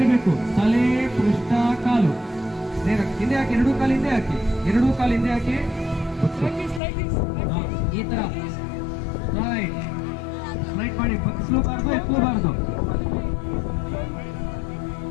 ತಲೆ ಪೃಷ್ಠ ಕಾಲು ನೇರ ಹಿಂದೆ ಹಾಕಿ, ಎರಡೂ ಕಾಲು ಹಿಂದೆ ಹಾಕಿ, ಎರಡೂ ಕಾಲು ಹಿಂದೆ ಹಾಕಿ, ಈ ತರ ರೈಟ್ ರೈಟ್ ಮಾಡಿ, ಬಗ್ಸ್ಲೂಬಾರ್ದು ಎತ್ತಲೂಬಾರ್ದು.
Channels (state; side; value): drops out; right; at 6.8 s